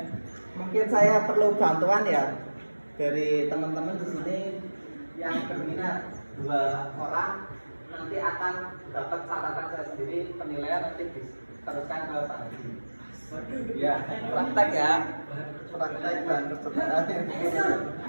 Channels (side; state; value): both; inverted; correlation -1.00